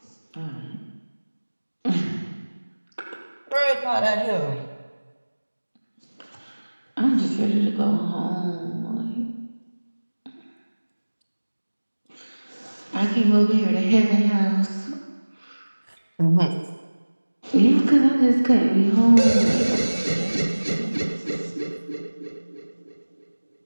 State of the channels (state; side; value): inverted; both; correlation -1.00